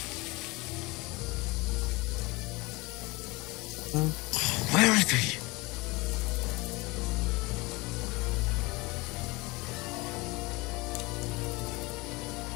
Where is he?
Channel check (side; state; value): right; quieter; 24.0 dB